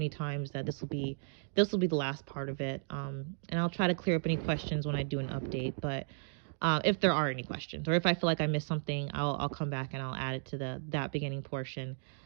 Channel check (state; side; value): silent; left; digital silence